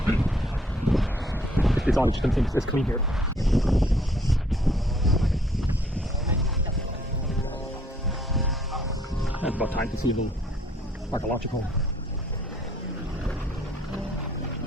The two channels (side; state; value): both; normal; correlation 0.63